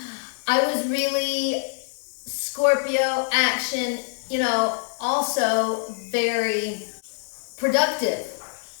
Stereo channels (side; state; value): right; silent; 57 dB below the other